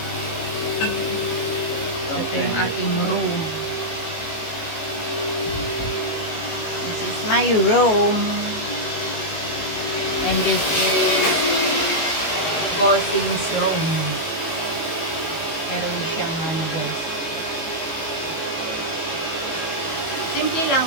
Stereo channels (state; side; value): late; right; 18 ms